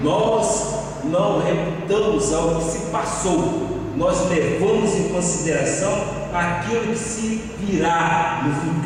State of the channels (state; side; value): identical; both; correlation 1.00